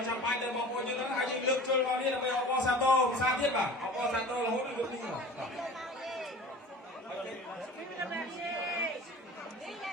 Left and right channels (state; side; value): normal; both; correlation 0.39